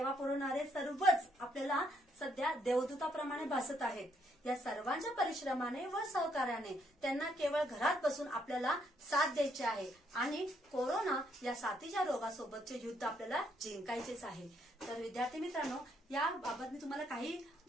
पुरवणारे सर्वच आपल्याला सध्या देवदूताप्रमाणे भासत आहेत। या सर्वांच्या परिश्रमाने व सहकार्याने त्यांना केवळ घरात बसून आपल्याला साथ द्यायची आहे आणि कोरोना या साथीच्या रोगासोबतचे युद्ध आपल्याला जिंकायचेच आहे। तर विद्यार्थी मित्रांनो, याबाबत मी तुम्हाला काही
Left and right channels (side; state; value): both; normal; correlation 0.73